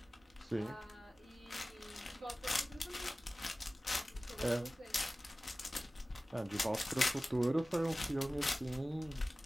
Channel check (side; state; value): both; normal; correlation 0.97